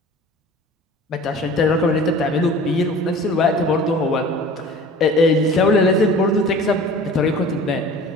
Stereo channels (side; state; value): both; normal; correlation 0.43